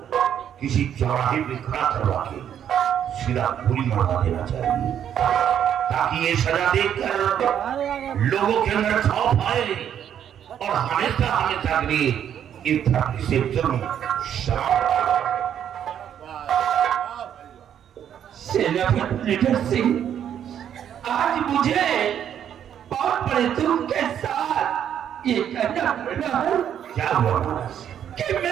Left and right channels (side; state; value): left; quieter; 9.5 dB